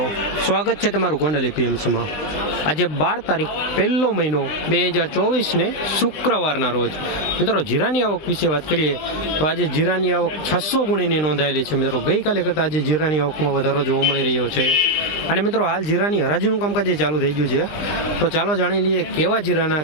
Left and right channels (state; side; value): late; right; 20 ms